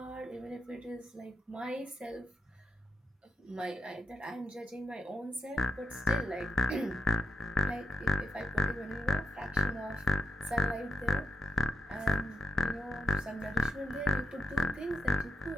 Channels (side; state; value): both; normal; correlation 0.84